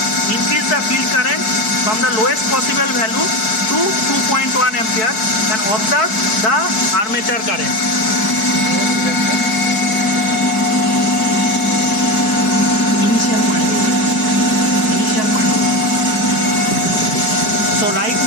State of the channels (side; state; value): right; late; 4.6 ms